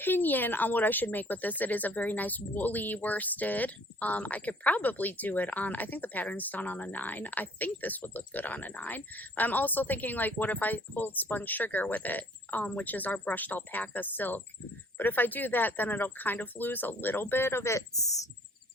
on what I should make with this. It is a very nice woolly worsted. I could probably do it on, I think the pattern's done on a 9. I think this would look good on a 9. But I'm also thinking, like, what if I hold Spun Sugar with it, which is our brushed alpaca silk. But if I do that, then it'll kind of lose a little bit of its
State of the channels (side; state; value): both; normal; correlation 0.56